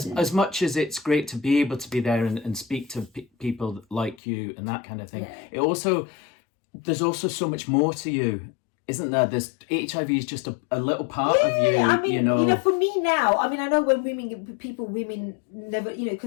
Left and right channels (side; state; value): right; drops out; at 4.2 s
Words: much as it's great to be able to be there and speak to people like you and that kind of thing, there's also so much more to you, isn't there? There's HIV is just a little part of you. I mean, for me now, I mean, I know when women never,